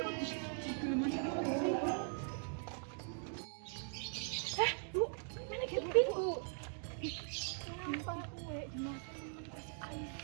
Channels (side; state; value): left; silent; 50 dB below the other